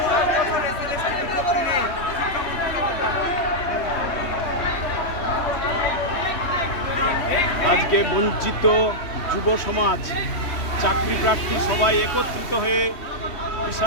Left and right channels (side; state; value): right; late; 3.2 ms